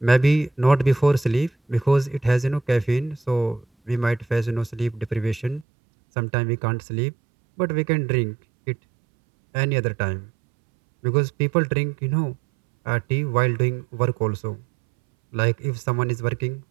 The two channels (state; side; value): drops out; left; at 5.7 s